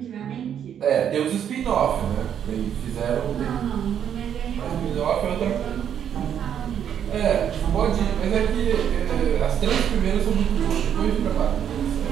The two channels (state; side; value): quieter; left; 9.1 dB